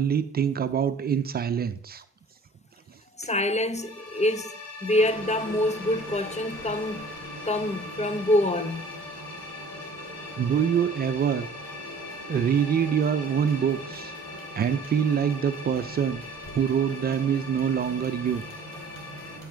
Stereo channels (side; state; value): left; quieter; 3.7 dB